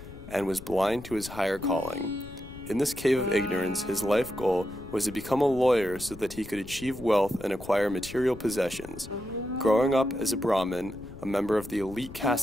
and was blind to his higher calling. In this cave of ignorance, his life goal was to become a lawyer so that he could achieve wealth and acquire material possessions. Growing up as a Brahmin, a member of the elite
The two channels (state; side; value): noise; left; rumble, 16 dB below the sound